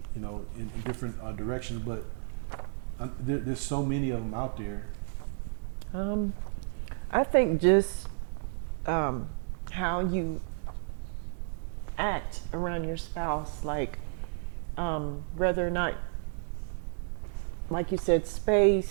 in different directions, but there's so many of them out there. I think just how you act around your spouse, like whether or not, like you said,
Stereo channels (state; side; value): silent; left; digital silence